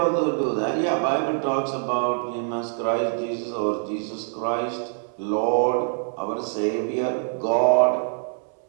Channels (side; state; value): left; silent; 62 dB below the other